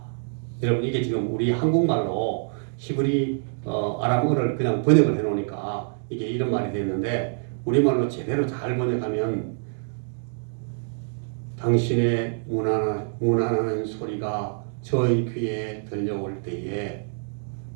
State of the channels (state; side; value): silent; left; digital silence